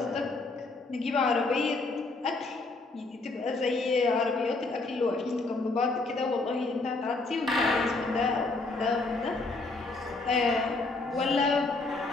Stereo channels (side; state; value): right; quieter; 3.4 dB